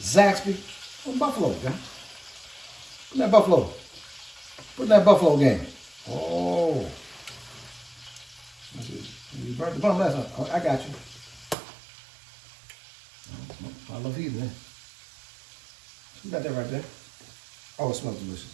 Zaxby. Oh, buffalo it, y'all. Put in that buffalo. Put in that buffalo game. Oh. You burnt the bun last night. Oh, I got you. I love eating it. You got that right there. Oh, it smells delicious.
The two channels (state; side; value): drops out; left; at 11.6 s